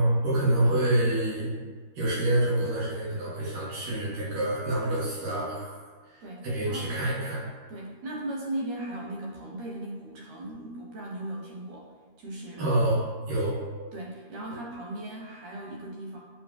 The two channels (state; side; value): late; left; 13 ms